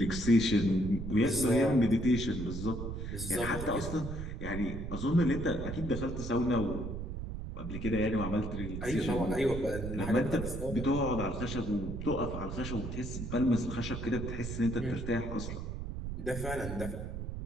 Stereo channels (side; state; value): right; noise; rumble, 6 dB below the sound